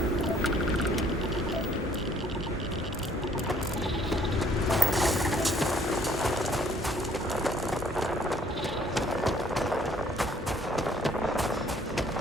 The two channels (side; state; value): both; normal; correlation 0.61